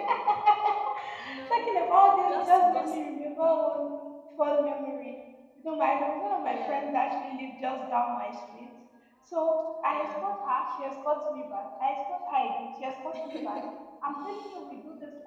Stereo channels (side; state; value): both; identical; correlation 1.00